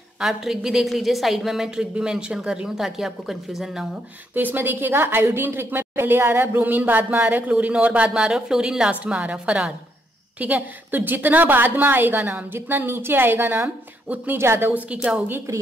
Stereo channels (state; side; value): normal; both; correlation 0.75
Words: आप ट्रिक भी देख लीजिए, साइड में मैं ट्रिक भी मेंशन कर रही हूँ ताकि आपको कंफ्यूजन ना हो। तो इसमें देखिएगा आयोडीन ट्रिक में पहले आ रहा है, ब्रोमीन बाद में आ रहा है, क्लोरीन और बाद में आ रहा है, फ्लोरीन लास्ट में आ रहा है, फरार, ठीक है। तो जितना बाद में आएगा नाम, जितना नीचे आएगा नाम, उतनी ज्यादा उसकी क्या होगी,